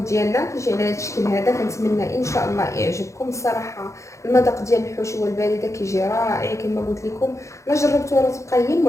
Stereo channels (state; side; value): late; right; 0.15 ms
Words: ديالنا كيجي على هذا الشكل هذا. كنتمنى ان شاء الله يعجبكم. الصراحه المذاق ديال الحشوه البارده كيجي رائع كما قلت لكم. لا جربتوها راه تبقى هي